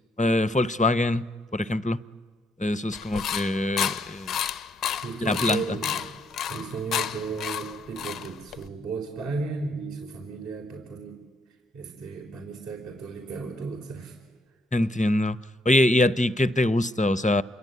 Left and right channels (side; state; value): both; normal; correlation 0.73